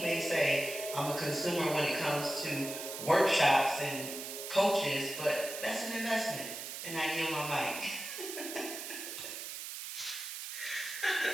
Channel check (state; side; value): noise; right; hiss, 7 dB below the sound